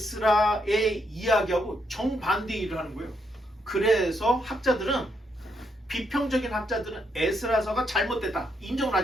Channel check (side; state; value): both; normal; correlation 0.77